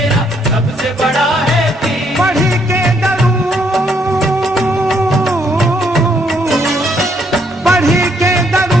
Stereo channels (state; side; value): normal; both; correlation 0.71